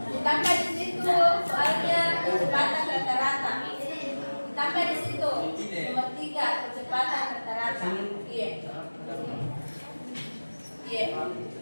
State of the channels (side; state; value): both; inverted; correlation -1.00